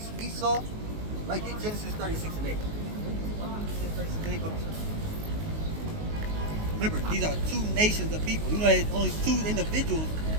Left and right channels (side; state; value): left; late; 19 ms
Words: Esau. Right? Get Genesis 36 and 8. Remember, these are two nations of people. You know, there's only two individuals,